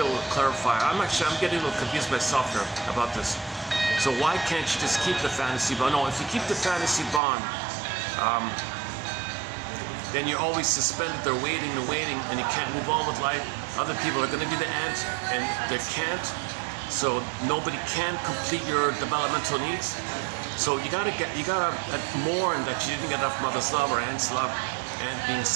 will clarify. I'm getting a little confused myself here about this. So why can't you just keep the fantasy bond? No, if you keep the fantasy bond, then you're always suspended. They're waiting, and you can't move on with life. Other people are going to be the aunt, and they can't. So nobody can complete your developmental needs. So you gotta mourn that you didn't get enough mother's love or aunt's love, and being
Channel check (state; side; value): drops out; left; at 7.2 s